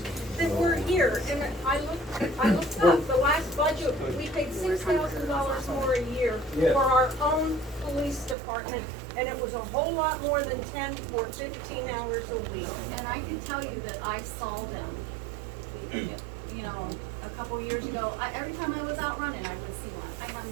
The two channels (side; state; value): left; drops out; at 8.3 s